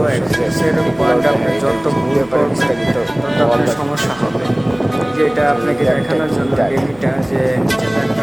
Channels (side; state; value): left; noise; hum, 24 dB below the sound